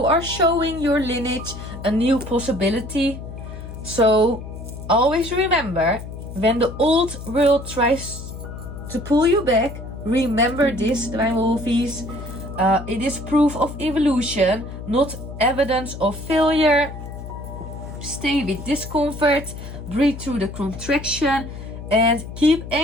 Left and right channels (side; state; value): left; noise; hum, 11 dB below the sound